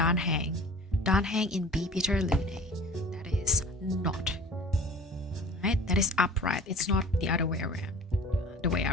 Danhang in B Peter Lune. That is not. Right? That is upright. It's not the other way around. The way I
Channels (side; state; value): both; normal; correlation 0.43